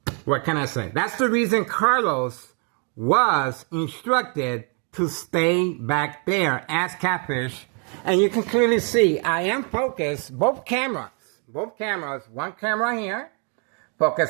what can I say? That's the reason Carlos was instructed to stay back there as Catfish. And you can clearly see I am focused. Both cameras. One camera here.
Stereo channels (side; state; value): left; quieter; 38.4 dB